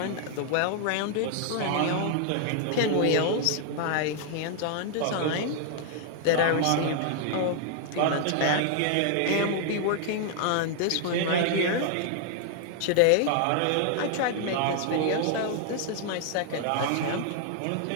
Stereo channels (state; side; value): different; both; correlation 0.00